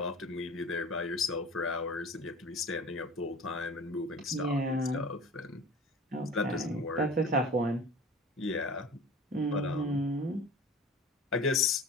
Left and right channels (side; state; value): both; normal; correlation 0.39